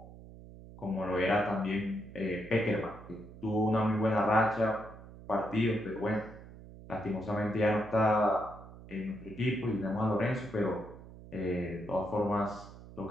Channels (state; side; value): noise; right; hum, 17 dB below the sound